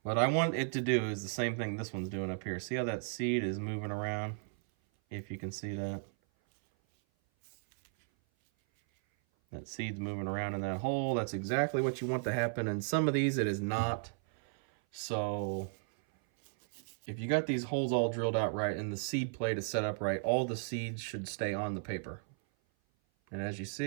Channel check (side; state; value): left; silent; 55 dB below the other